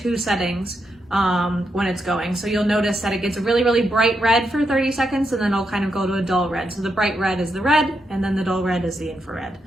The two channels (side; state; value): both; normal; correlation 0.82